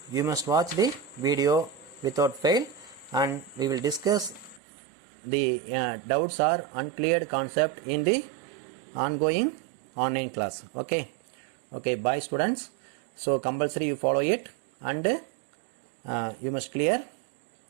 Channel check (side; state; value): left; drops out; at 4.6 s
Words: you must watch the video without fail, and we will discuss the doubts or uncleared concept in the ongoing online class. Okay. Okay, bye students. So compulsory you follow it, and you must clear